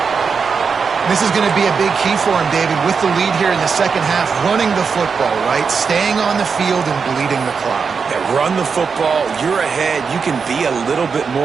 This is going to be a big key for him, David, with the lead here in the second half, running the football, right? Staying on the field and bleeding the clock. Yeah, run the football. You're ahead. You can be a little bit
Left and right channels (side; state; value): left; quieter; 5.6 dB